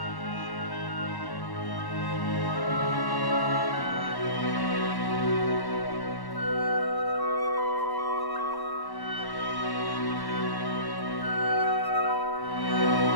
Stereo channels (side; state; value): right; late; 1.1 ms